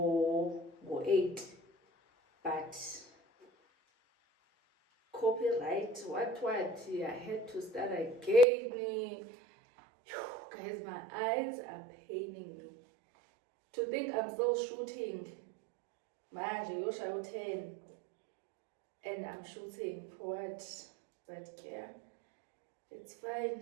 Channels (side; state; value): left; drops out; at 8.5 s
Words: 8, but copyright, what, I had to start again. Guys, my eyes are paining me. To think I'm still shooting, manje yoshaya 10, and I'm shooting for what? But yeah, it's fine.